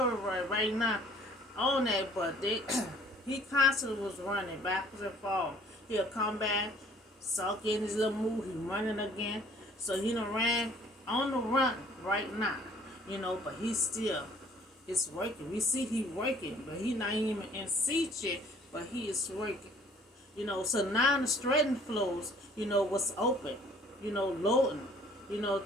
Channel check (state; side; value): normal; both; correlation 0.56